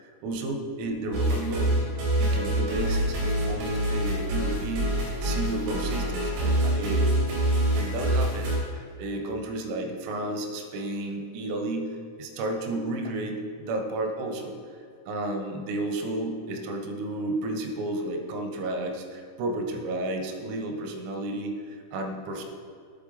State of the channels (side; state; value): left; late; 26 ms